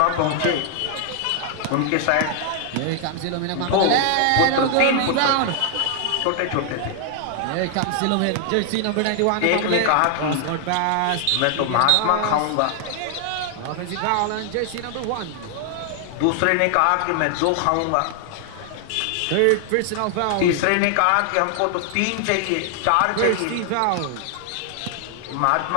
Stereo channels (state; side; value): different; both; correlation 0.00